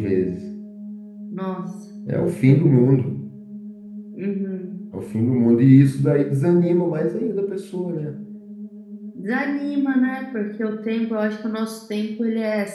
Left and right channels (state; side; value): identical; both; correlation 1.00